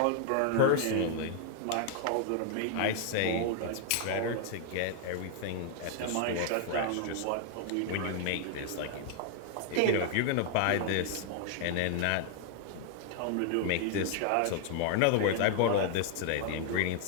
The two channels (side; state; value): both; different; correlation 0.00